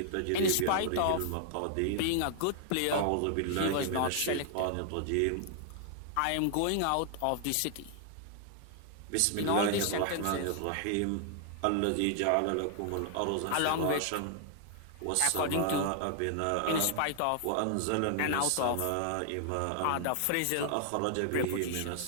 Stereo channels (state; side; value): different; both; correlation 0.00